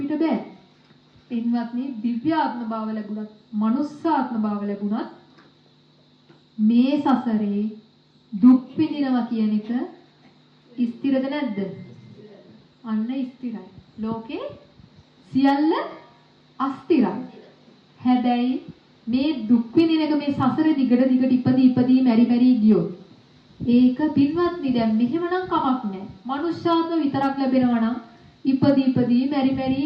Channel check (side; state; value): both; identical; correlation 1.00